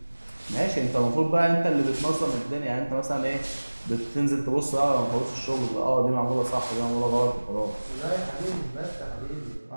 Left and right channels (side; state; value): both; inverted; correlation -1.00